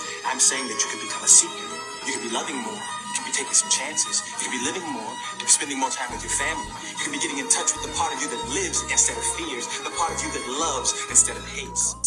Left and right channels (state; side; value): identical; both; correlation 1.00